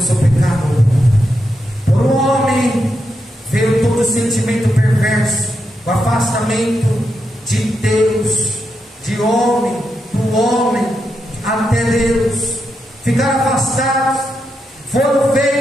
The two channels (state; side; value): normal; both; correlation 0.84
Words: o pecado. Por um homem veio todo o sentimento perverso, o afastamento de Deus, de homem, do homem até Deus. Ficaram afastados, foram